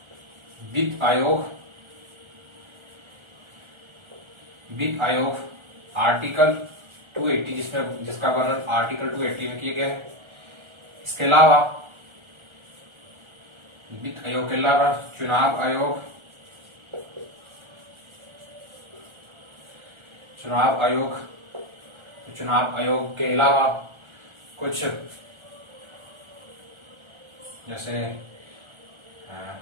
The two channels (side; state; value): left; late; 1.4 ms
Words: वित्त आयोग आर्टिकल 280, जिसका वर्णन आर्टिकल 280 में किया गया है। इसके अलावा वित्त आयोग के अलावा चुनाव आयोग के अलावा कुछ जैसे